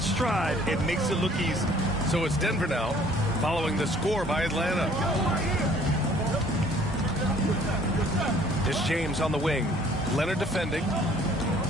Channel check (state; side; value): normal; both; correlation 0.57